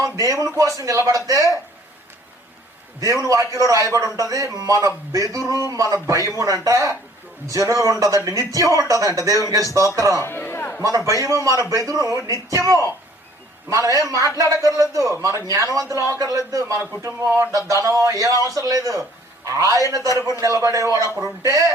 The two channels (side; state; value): both; normal; correlation 0.57